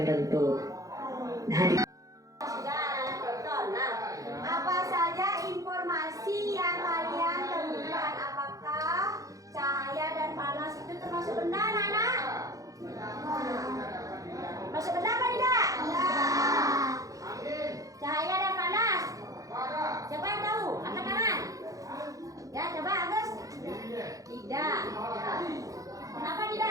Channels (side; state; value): left; late; 0.17 ms